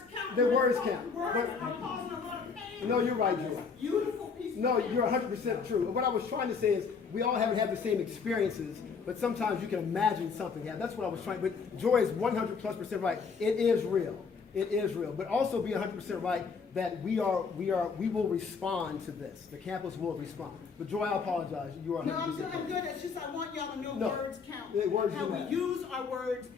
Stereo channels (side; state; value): right; quieter; 5.4 dB